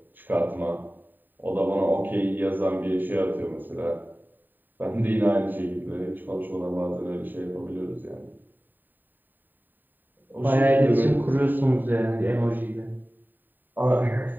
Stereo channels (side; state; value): left; late; 0.090 ms